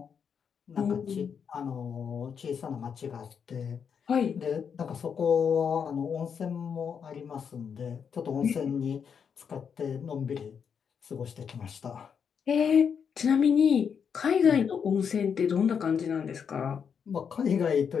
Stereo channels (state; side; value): quieter; right; 7.0 dB